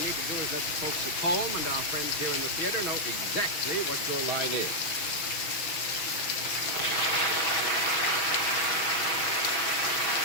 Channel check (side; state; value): right; late; 6.2 ms